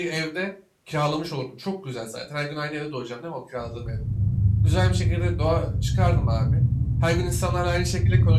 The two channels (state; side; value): identical; both; correlation 1.00